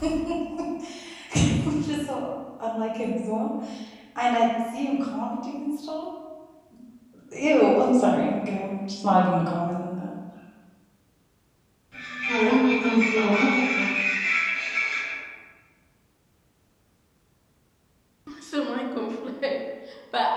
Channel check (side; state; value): both; identical; correlation 1.00